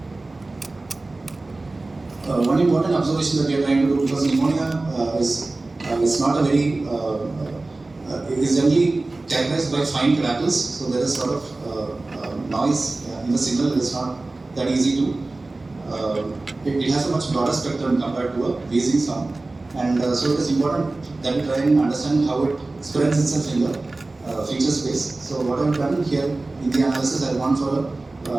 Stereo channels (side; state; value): left; quieter; 3.2 dB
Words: One important observation that we are trying to do, because pneumonia is not a very is generally characterized by fine crackles, so there is sort of noise in the signal. It is not that easy to. It has a much broader spectrum compared to a wheezing sound, and so it is important that we try and understand how it spreads itself in the feature space. So what I have done here in the analysis, I have gone for